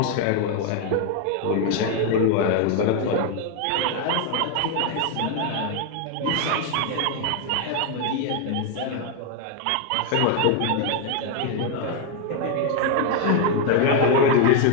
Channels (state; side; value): different; both; correlation 0.01